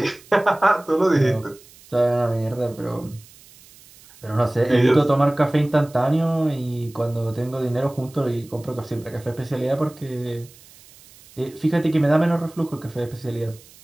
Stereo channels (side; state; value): right; noise; hiss, 24 dB below the sound